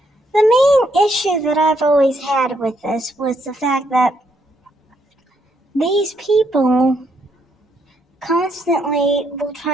the main issue that I've always had with this was the fact that these people constantly will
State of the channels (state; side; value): normal; both; correlation 0.74